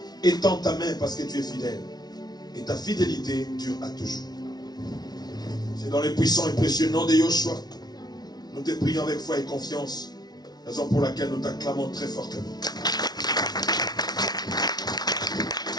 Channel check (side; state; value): right; late; 0.19 ms